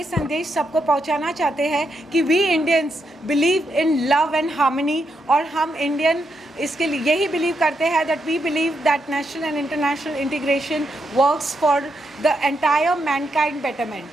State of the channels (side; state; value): both; normal; correlation 0.81